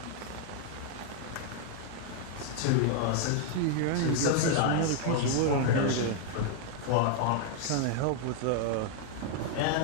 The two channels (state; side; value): different; both; correlation 0.00